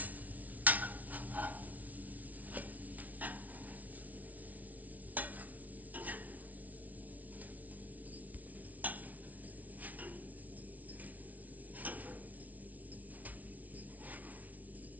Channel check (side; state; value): left; late; 0.073 ms